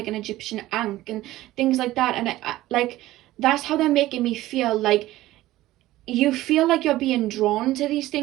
an Egyptian ankh and things like that. And I like, that's how they're making me feel. Like you feel like you're being drawn to these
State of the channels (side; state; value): left; quieter; 16.1 dB